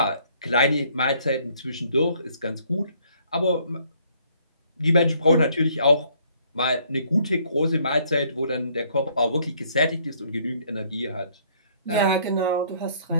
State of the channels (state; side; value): inverted; both; correlation -0.64